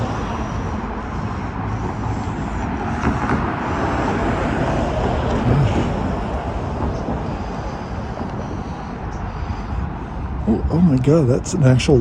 Oh my God, that's an actual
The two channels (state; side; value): identical; both; correlation 1.00